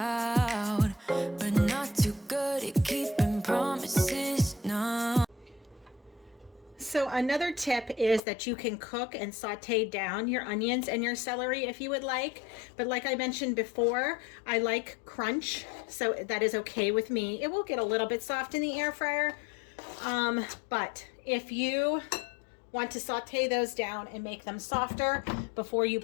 but not too good at keeping promises, no. So another tip is that you can cook and saute down your onions and your celery if you would like. But like I mentioned before, I like crunch, so that is okay with me. It will get a little bit soft in the air fryer, but if you want to saute those down and make them softer before you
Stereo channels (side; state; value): right; drops out; at 8.2 s